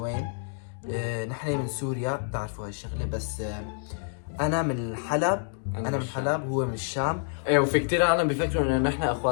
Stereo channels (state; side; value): silent; right; digital silence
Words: نحن من سوريا بتعرفوا هالشغلة، بس انا من الحلب. انا من الحلب هو من الشام. ايه وفي كتير عالم بيفكروا انه نحن